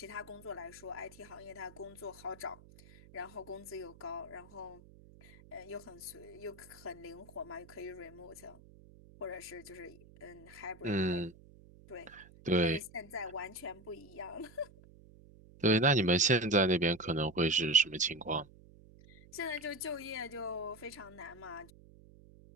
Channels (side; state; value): right; noise; hum, 22 dB below the sound